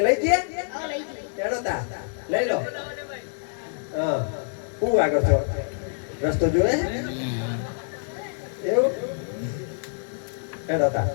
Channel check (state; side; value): silent; right; 61 dB below the other